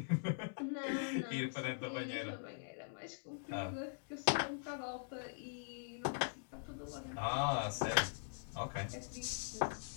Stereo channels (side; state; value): right; silent; digital silence